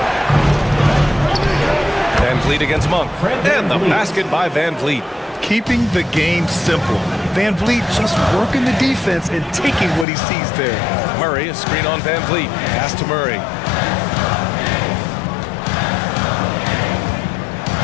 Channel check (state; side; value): drops out; right; at 10.1 s